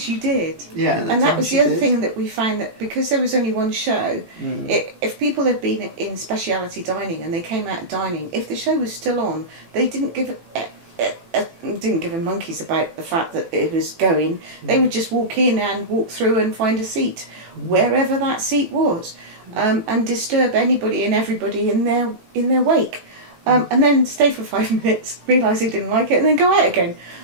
you did. Yeah. And that was the other thing that we found, that because there was only one show, if people had been in speciality dining and they came out of dining, if the show was still on, they didn't give a monkeys about the fact that it was going. They would just walk in and walk through and find a seat wherever that seat was. And disturb anybody and everybody in their wake, and then stay for 5 minutes, realise they didn't like it, and then go out again.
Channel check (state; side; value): late; left; 18 ms